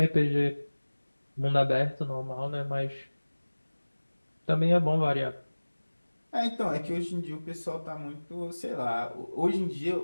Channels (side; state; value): both; inverted; correlation -1.00